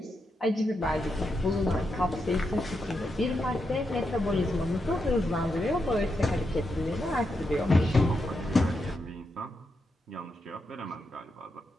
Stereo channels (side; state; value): both; normal; correlation 0.84